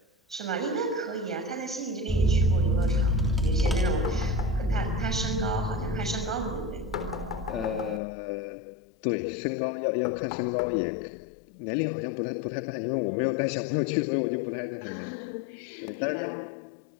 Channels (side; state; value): right; drops out; at 8.0 s